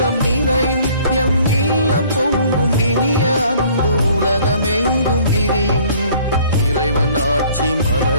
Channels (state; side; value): inverted; both; correlation -0.55